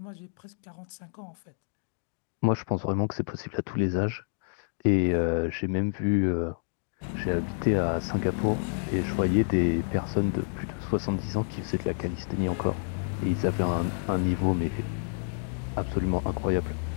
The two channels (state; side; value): silent; right; digital silence